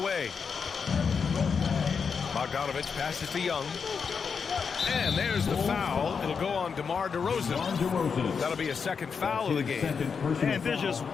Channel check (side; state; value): right; quieter; 5.9 dB